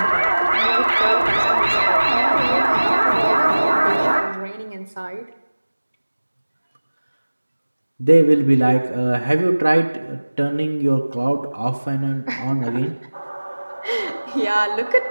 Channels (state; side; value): inverted; both; correlation -1.00